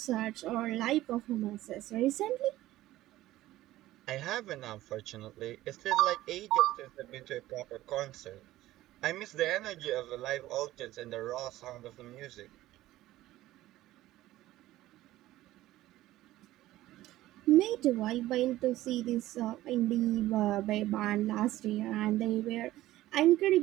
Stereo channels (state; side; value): quieter; left; 15.6 dB